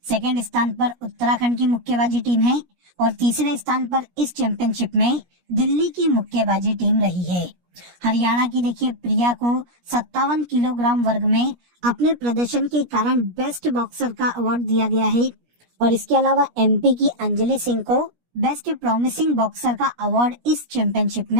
सेकंड स्थान पर उत्तराखंड की मुक्केबाजी टीम है और तीसरे स्थान पर इस चैंपियनशिप में दिल्ली की मुक्केबाजी टीम रही है। हरियाणा की देखिए प्रिया को 57 किलोग्राम वर्ग में अपने प्रदर्शन के कारण बेस्ट बॉक्सर का अवार्ड दिया गया है और इसके अलावा एमपी की अंजलि सिंह को बेस्ट प्रॉमिसिंग बॉक्सर का अवार्ड इस चैंपियनशिप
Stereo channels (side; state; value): left; late; 17 ms